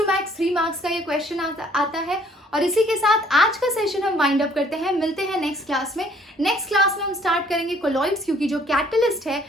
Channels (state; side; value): normal; both; correlation 0.60